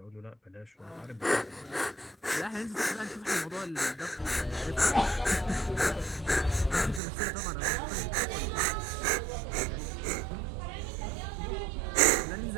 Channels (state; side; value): drops out; left; at 7.0 s